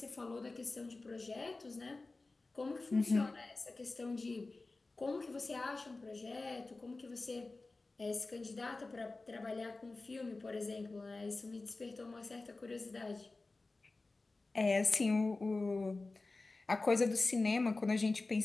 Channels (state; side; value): quieter; right; 3.4 dB